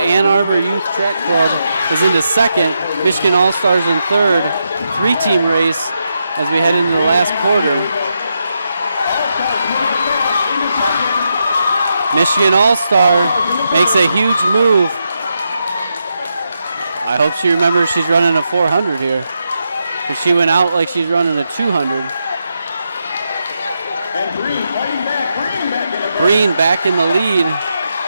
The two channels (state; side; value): inverted; both; correlation -0.84